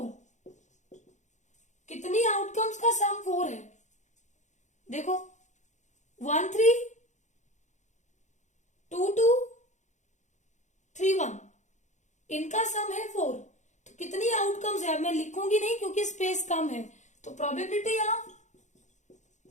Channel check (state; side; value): late; right; 0.35 ms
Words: कितनी आउटकम्स का सम 4 है? देखो 1 3 2 2 3 1, इनका सम है 4। तो कितनी आउटकम्स है? मैं लिखूंगी नहीं क्योंकि स्पेस कम है। तो प्रोबेबिलिटी ऑफ